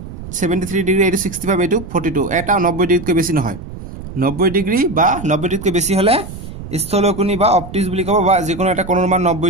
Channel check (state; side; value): noise; right; rumble, 12 dB below the sound